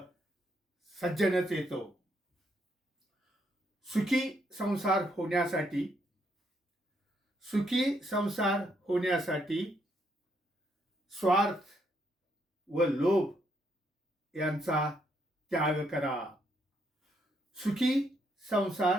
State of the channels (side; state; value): both; normal; correlation 0.74